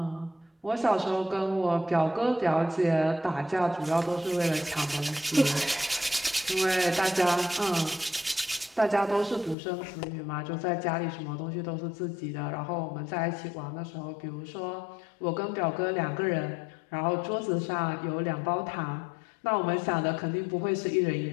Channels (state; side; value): drops out; right; at 9.6 s